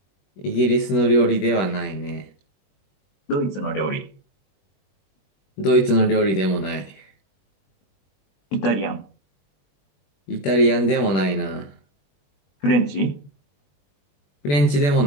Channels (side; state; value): right; late; 21 ms